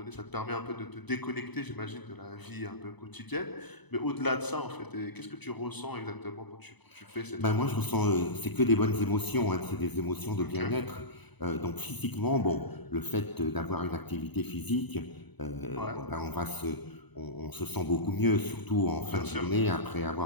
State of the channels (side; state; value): right; late; 1.0 ms